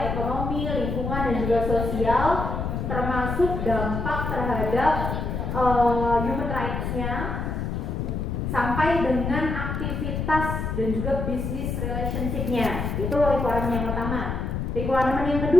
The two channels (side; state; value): left; noise; rumble, 2 dB below the sound